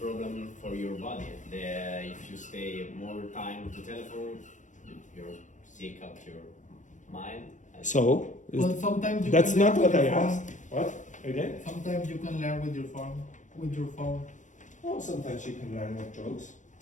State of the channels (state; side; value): late; right; 0.36 ms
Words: problem for your body. If you stay more time to telephone, you're sick of your mind. So, But sometimes you that's can not learn what with I your phone. asked. What? Again? Sometimes you can learn with your phone. Oh, sometimes you can learn with drugs.